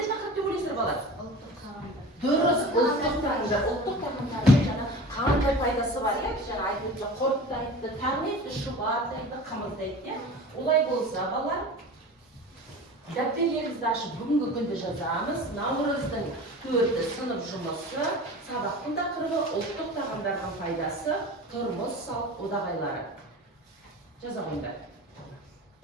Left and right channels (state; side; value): normal; both; correlation 0.36